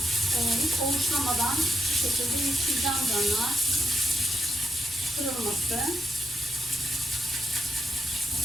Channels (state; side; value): normal; both; correlation 0.88